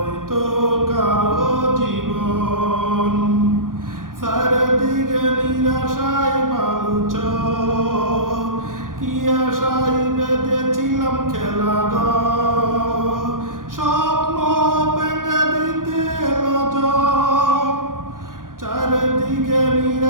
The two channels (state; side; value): late; left; 0.90 ms